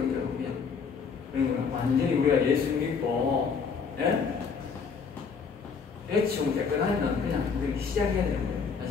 줄 그냥. 그러니까 완전히 우리가 예수 믿고, 예? 대충 깨끗하면 그냥 우리 시작해야 되는 거예요.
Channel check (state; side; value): quieter; right; 5.6 dB